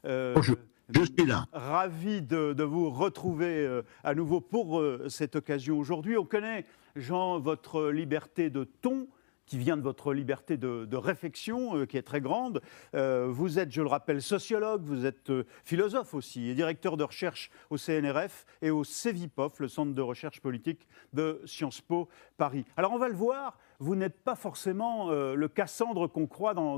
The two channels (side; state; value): right; silent; digital silence